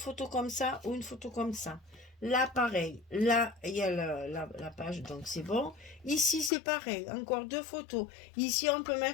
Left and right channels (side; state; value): right; drops out; at 6.5 s